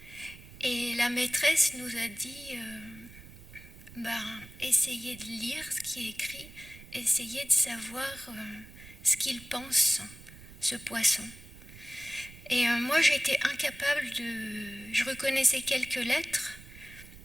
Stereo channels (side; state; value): right; noise; rumble, 18 dB below the sound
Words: Et la maîtresse nous a dit, essayez de lire ce qui est écrit, essayez de savoir ce qu'il pense, ce poisson. Et moi, j'étais incapable je reconnaissais quelques lettres,